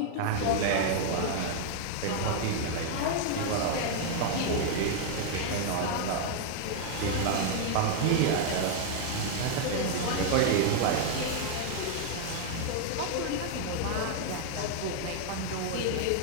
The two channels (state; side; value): different; both; correlation 0.00